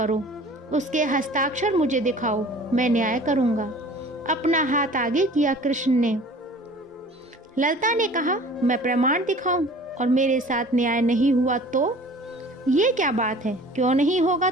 उसके हस्ताक्षर मुझे दिखाओ, मैं न्याय करूंगा। अपना हाथ आगे किया कृष्ण ने। ललता ने कहा, मैं प्रमाण दिखाऊं और मेरे साथ न्याय नहीं हुआ तो? ये क्या बात है? क्यों नहीं होगा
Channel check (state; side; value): normal; both; correlation 0.46